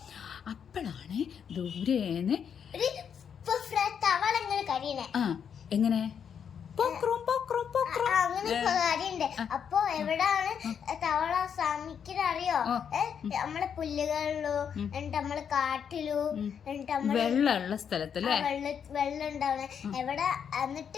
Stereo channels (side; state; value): right; quieter; 7.6 dB